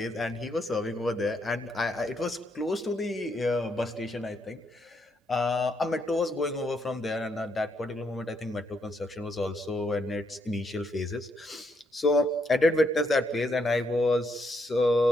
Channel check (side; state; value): both; normal; correlation 0.76